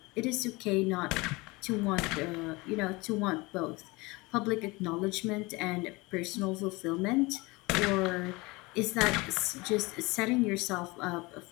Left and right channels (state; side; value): quieter; right; 24.1 dB